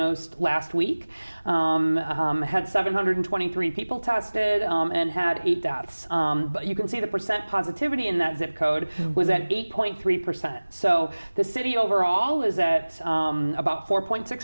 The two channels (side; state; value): both; inverted; correlation -1.00